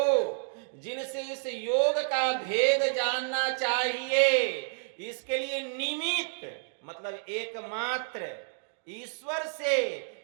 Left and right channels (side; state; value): left; silent; digital silence